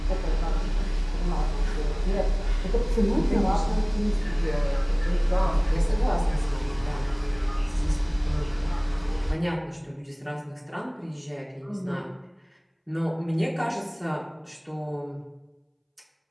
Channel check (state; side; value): identical; both; correlation 1.00